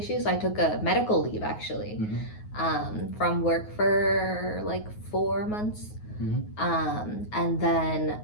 I took a medical leave actually, Mhm. from work for like 4 months, Mhm. and then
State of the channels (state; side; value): late; right; 9.5 ms